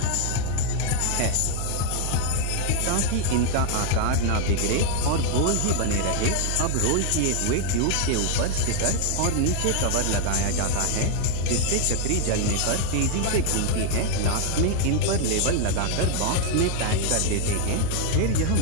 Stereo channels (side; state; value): both; different; correlation 0.00